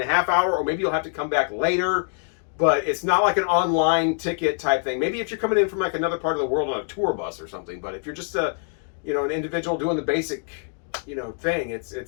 half hour, or maybe you'll have to come back later. But it's not like an online ticket type thing. Maybe if you're coming in from like another part of the world on a tour bus or something. But if you're just an individual doing the basic thing,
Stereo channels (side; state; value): right; silent; 60 dB below the other